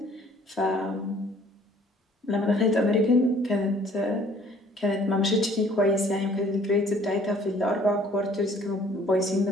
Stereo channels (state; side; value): normal; both; correlation 0.57